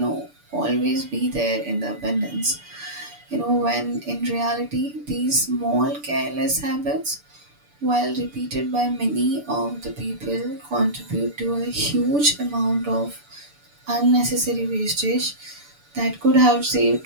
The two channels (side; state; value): left; late; 6.9 ms